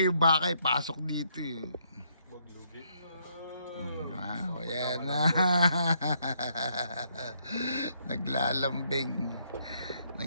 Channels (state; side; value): inverted; both; correlation -0.72